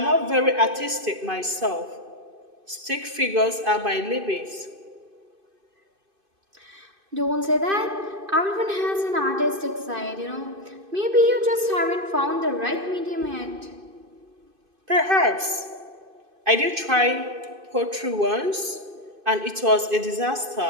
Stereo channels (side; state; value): left; late; 2.5 ms